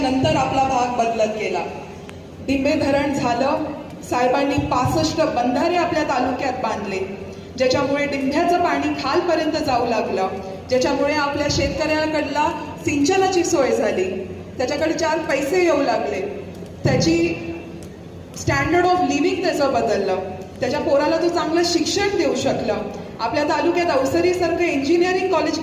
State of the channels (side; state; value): both; identical; correlation 1.00